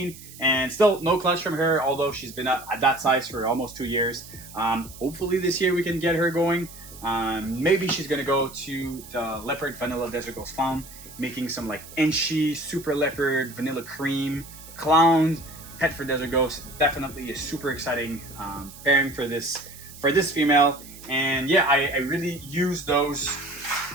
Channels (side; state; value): right; noise; hiss, 17 dB below the sound